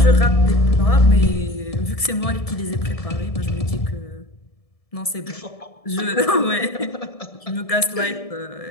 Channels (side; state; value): right; late; 1.7 ms